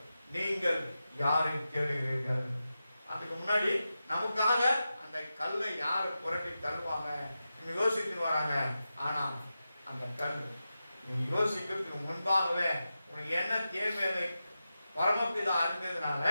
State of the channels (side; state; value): both; inverted; correlation -0.91